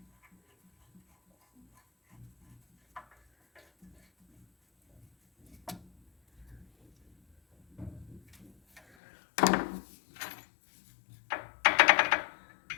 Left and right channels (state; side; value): drops out; right; at 8.8 s